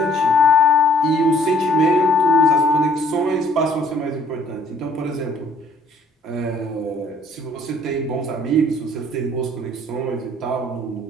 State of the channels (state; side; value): normal; both; correlation 0.59